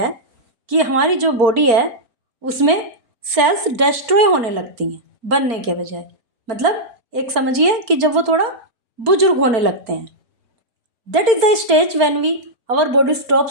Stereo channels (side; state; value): left; late; 4.4 ms